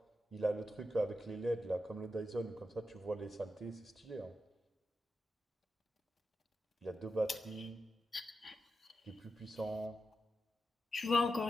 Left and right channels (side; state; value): both; normal; correlation 0.88